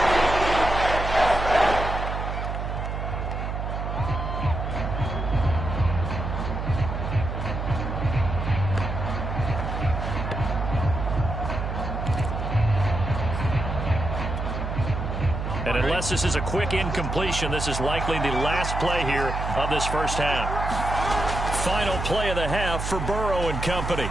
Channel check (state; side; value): noise; right; hum, 3 dB below the sound